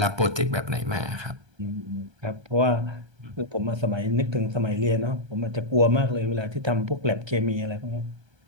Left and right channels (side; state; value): left; late; 1.3 ms